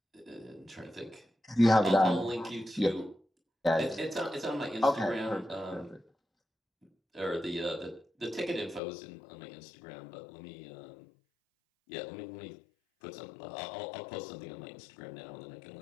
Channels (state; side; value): drops out; right; at 8.8 s